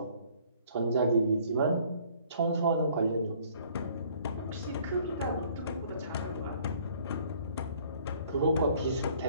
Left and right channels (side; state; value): both; inverted; correlation -0.57